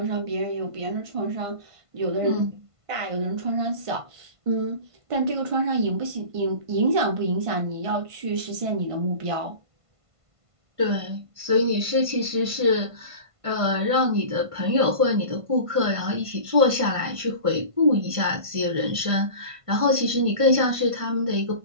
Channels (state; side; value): late; left; 1.5 ms